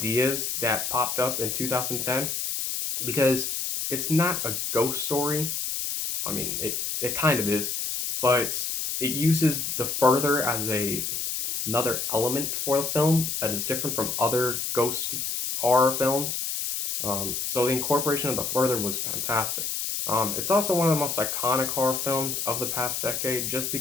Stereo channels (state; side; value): noise; left; hiss, 2 dB below the sound